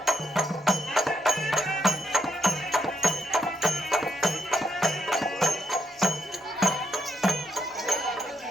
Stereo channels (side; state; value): both; normal; correlation 0.79